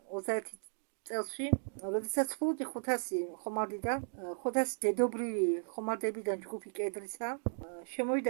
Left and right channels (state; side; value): silent; left; digital silence